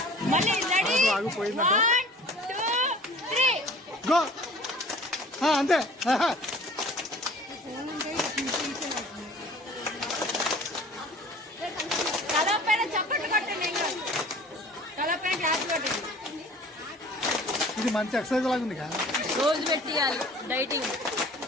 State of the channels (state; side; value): normal; both; correlation 0.47